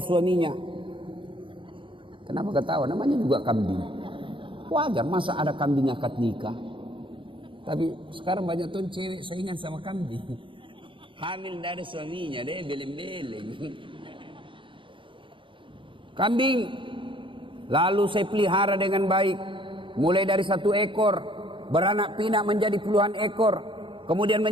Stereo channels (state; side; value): late; left; 0.25 ms